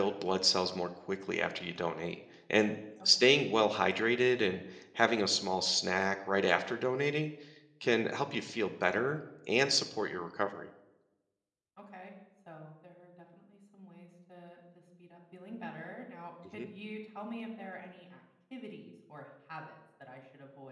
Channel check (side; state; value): both; identical; correlation 1.00